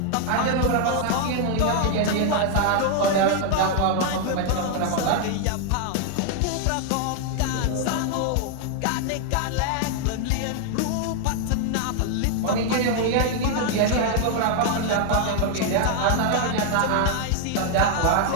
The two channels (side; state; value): both; different; correlation 0.00